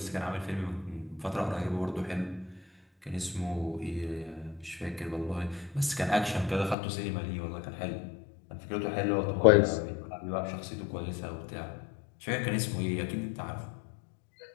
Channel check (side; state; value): right; drops out; at 6.8 s